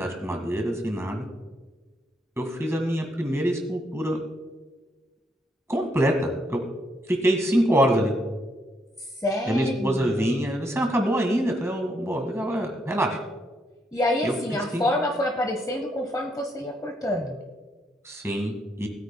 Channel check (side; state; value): both; normal; correlation 0.76